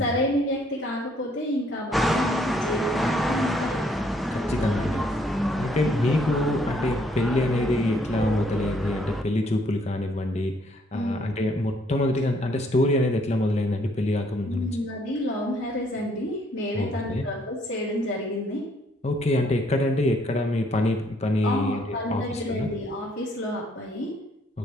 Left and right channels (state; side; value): normal; both; correlation 0.67